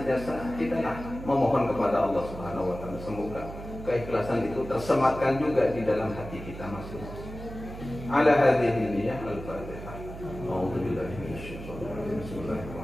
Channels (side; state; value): right; noise; hum, 11 dB below the sound